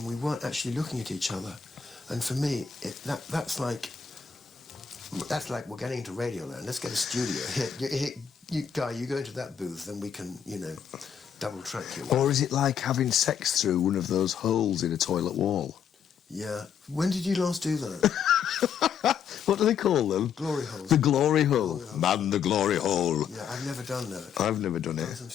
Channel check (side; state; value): right; quieter; 7.5 dB